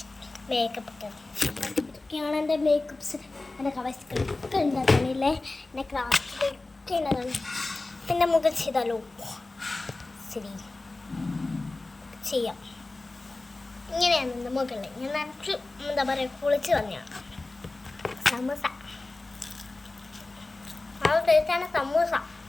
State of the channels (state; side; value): quieter; right; 3.2 dB